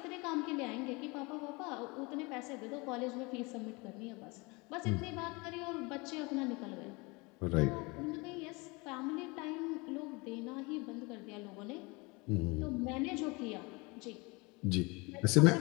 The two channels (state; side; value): quieter; right; 26.8 dB